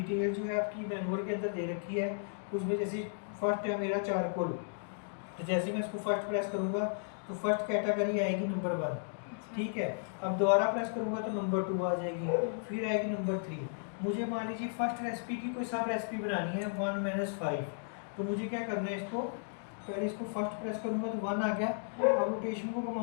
जो है आपकी मैनुअल के अंदर दे रखी है। उसमें जैसे फर्स्ट है मेरा चारकोल, तो जैसे मैं इसको फर्स्ट प्रेस करूँगा तो फर्स्ट कैटेगरी आएगी नंबर 1, ठीक है। अब दोबारा प्रेस करूँगा तो नंबर 2 आ जाएगी, फिर आएगी नंबर 3। मुझे मान लीजिए फर्स्ट रेसिपी की कोई सब रेसिपी बनानी है 1 - 5, तो मुझे क्या करना है, इसको पहले इसको फर्स्ट प्रेस करूँगा तो 1 आ गया। अब रोटेशन को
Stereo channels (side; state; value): right; silent; digital silence